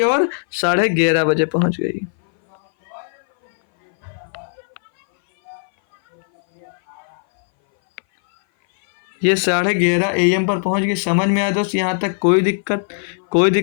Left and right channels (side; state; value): right; silent; 59 dB below the other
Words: और 11:30 बजे पहुंच गई। ये 11:30 AM पर पहुंच गई। समझ में आया दोस्त यहाँ तक? कोई